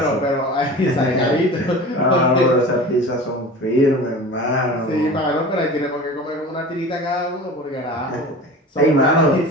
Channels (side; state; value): both; normal; correlation 0.37